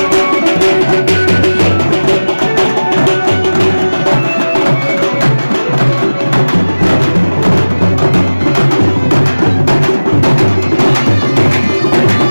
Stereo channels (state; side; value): inverted; both; correlation -1.00